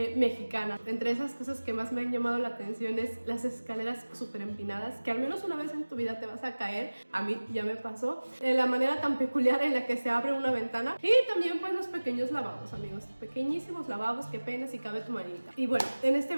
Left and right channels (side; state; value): both; inverted; correlation -1.00